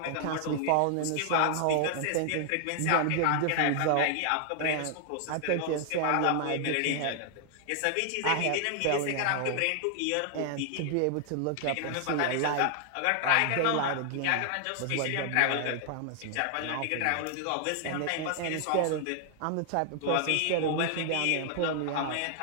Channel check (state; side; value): different; both; correlation 0.00